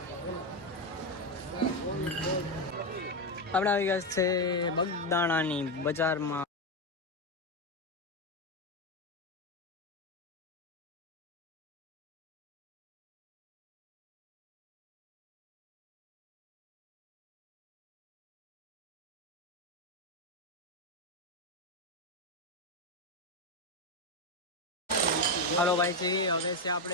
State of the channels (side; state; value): both; normal; correlation 0.10